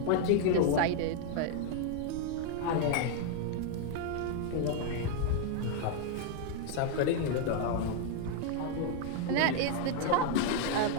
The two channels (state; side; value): different; both; correlation 0.00